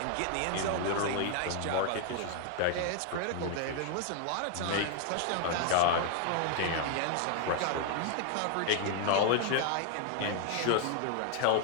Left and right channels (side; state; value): both; different; correlation 0.00